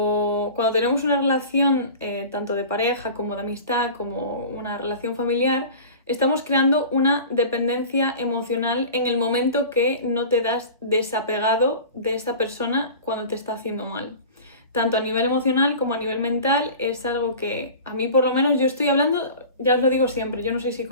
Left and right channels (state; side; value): inverted; both; correlation -0.37